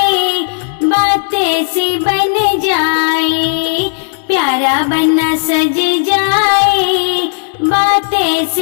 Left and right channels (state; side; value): silent; right; digital silence